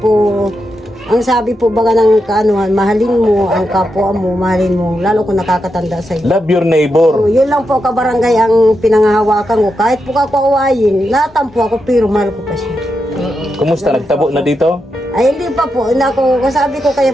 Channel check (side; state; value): both; normal; correlation 0.86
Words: ang sabi po baga ng kaanuhan, mahalin mo ang kapwa mo, mahalin mo, lalo kung nakakatanda sa iyo. Love your neighbor. Yun lang po kabarangay ang pinangahawakan ko. Kahit po ako awayin, natampo ako pero mahal ko pa siya. Kumusta? Nagtabo na dito? Ay hindi pa po, hindi ako, sabi ko kay